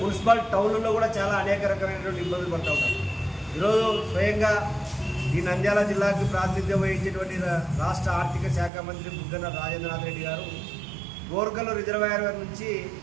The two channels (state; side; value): drops out; left; at 8.7 s